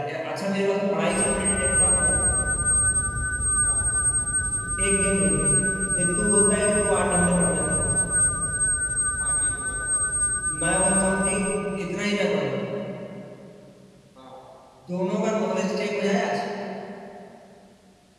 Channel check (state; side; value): identical; both; correlation 1.00